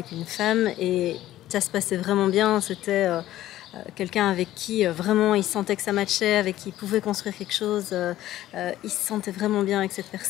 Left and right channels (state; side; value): quieter; right; 14.1 dB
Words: une femme et ça se passait vraiment bien. C'était quelqu'un avec qui vraiment il sentait que ça matchait, avec qui il pouvait construire quelque chose. Il se sentait vraiment bien avec cette